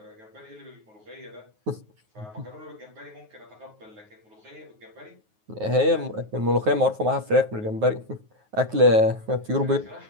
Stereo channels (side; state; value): left; late; 9.4 ms